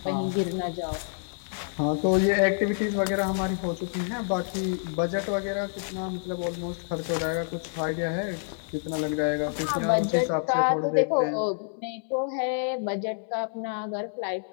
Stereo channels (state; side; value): silent; right; digital silence